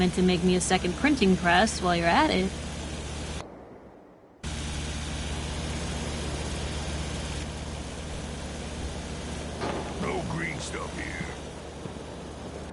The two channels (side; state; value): both; identical; correlation 1.00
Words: to make me a second printing press while you're at it. No green stuff here.